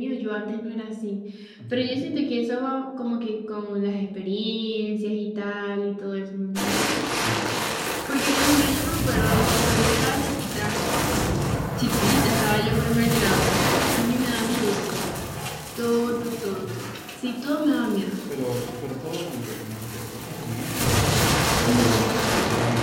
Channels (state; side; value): identical; both; correlation 1.00